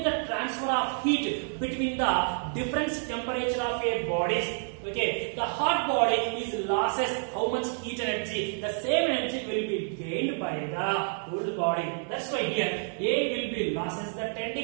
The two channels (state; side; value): silent; left; 59 dB below the other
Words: the transfer of heat between the different temperature of a bodies, the hot body is losses how much heat energy? The same energy will be gained by the cool body. That's why here A will be losses the 10